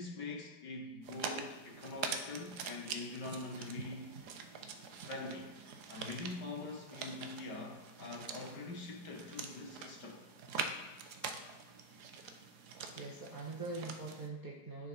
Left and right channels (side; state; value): right; late; 4.9 ms